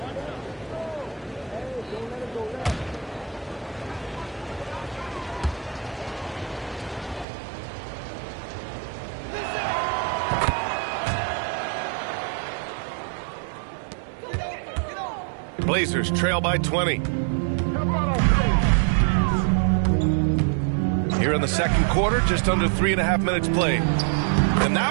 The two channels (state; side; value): drops out; left; at 7.2 s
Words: Blazers trail by 20. Here in the second quarter, just under 3.5 minutes played. And